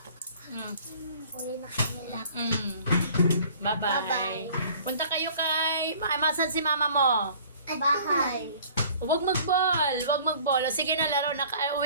Uli na kanila. Bye-bye. Punta kayo kay... Masan si mama mo? Bahay. Huwag mag-ball. Huwag mag-ball. O, sige na, laro na.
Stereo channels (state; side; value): inverted; both; correlation -0.51